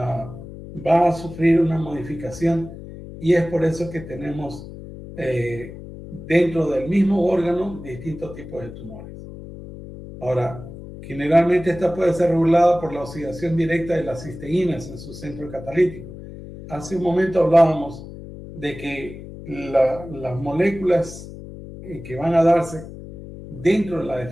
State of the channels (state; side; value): noise; left; hum, 13 dB below the sound